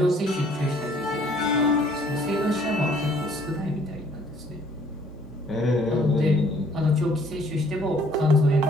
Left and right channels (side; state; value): both; normal; correlation 0.60